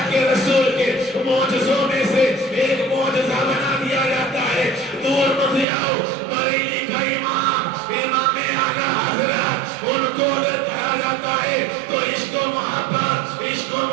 کے رسول کے معجزوں میں سے ایک معجزہ بنا دیا جاتا ہے۔ دور مت جاؤ، بریلی کا امام اعلیٰ حضرت، ان کو اگر کہا جاتا ہے تو عشق و محبت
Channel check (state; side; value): drops out; left; at 5.7 s